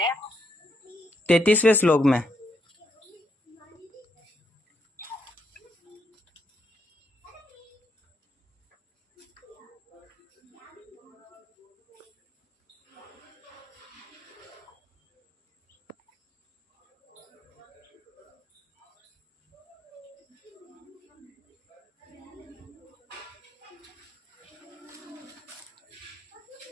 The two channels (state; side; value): normal; both; correlation 0.78